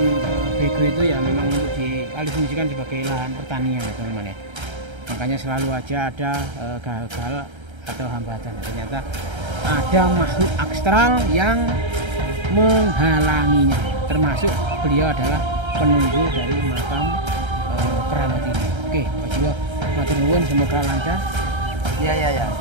BG itu ya memang untuk dialihfungsikan sebagai lahan pertanian ya teman-teman ya. Makanya selalu aja ada gagal atau hambatan. Ternyata ada makhluk astral yang menghalanginya. Termasuk beliau adalah penunggu dari makam keramat ini. Oke, Pak Jiwo, matur nuwun, semoga lancar. Iya.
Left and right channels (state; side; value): late; left; 1.3 ms